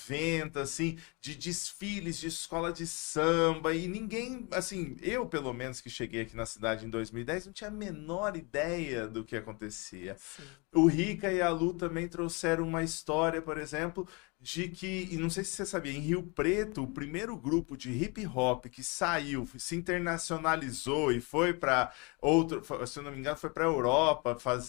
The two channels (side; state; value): right; quieter; 29.7 dB